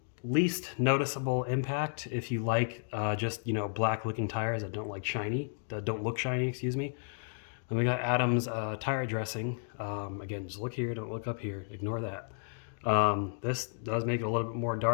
least noticeable impact if you like just, black looking tires that don't look shiny, excuse me. Then we got Adams tire dressing. Again, just look here, don't look up here, ignore that. This does make it a little bit more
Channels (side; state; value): right; silent; digital silence